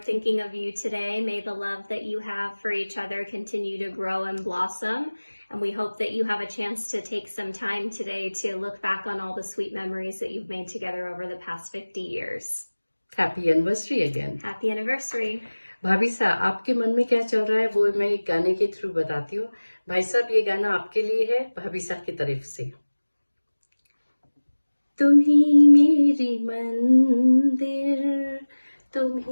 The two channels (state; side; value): inverted; both; correlation -1.00